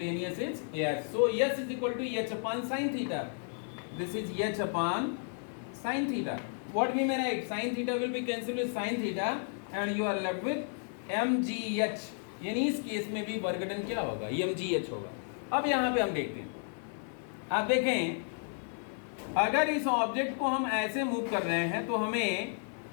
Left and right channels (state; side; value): silent; right; 55 dB below the other